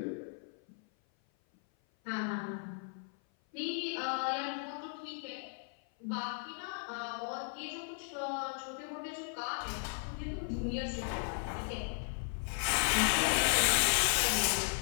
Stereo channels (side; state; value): right; silent; 54 dB below the other